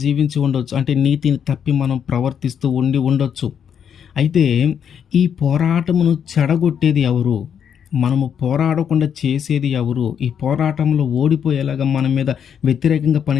ఉండొచ్చు. అంటే నీతిని తప్పి మనం ప్రవర్తిస్తూ ఉండొచ్చు. అయితే ఈ పోరాటమును చెడగొట్టేది ఎవరు? మనము పోరాడకుండా చేసేది ఎవరు? ఈ పోరాటంలో ఓడిపోయేలాగా మన మీద వ్యతిరేకంగా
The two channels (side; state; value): right; quieter; 8.1 dB